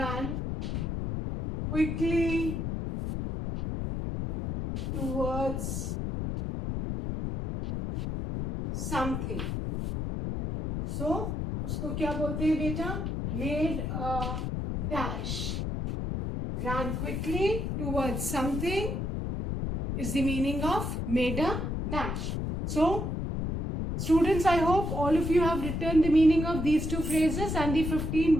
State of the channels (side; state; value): left; noise; rumble, 2 dB below the sound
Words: quickly towards something. So उसको क्या बोलते हैं बेटा, made a dash. ran quickly towards something is the meaning of made a dash. So, students, I hope all of you have written the meaning of these two phrases and the 15